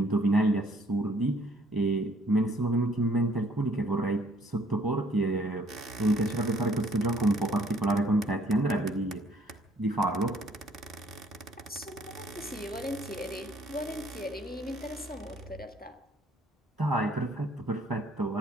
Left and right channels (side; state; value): both; normal; correlation 0.62